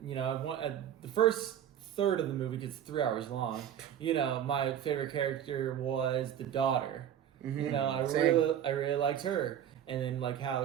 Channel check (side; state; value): left; quieter; 9.9 dB